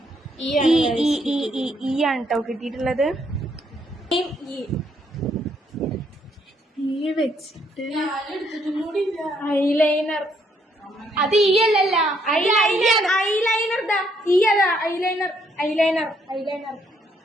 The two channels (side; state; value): both; normal; correlation 0.71